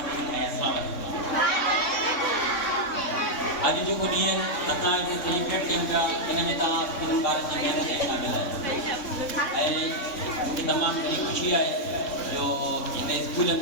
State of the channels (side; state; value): right; late; 3.6 ms